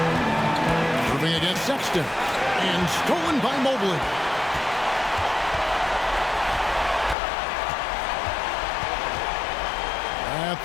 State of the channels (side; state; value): right; drops out; at 7.2 s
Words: Irving against Sexton. And stolen by Mobley. At